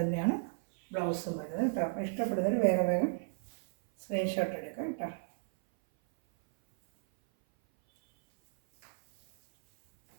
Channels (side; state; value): left; silent; 56 dB below the other